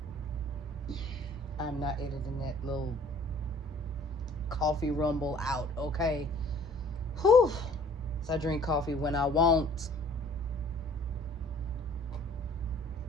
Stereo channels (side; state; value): both; normal; correlation 0.54